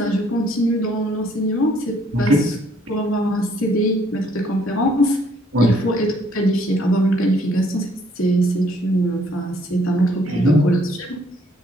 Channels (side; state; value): both; normal; correlation 0.64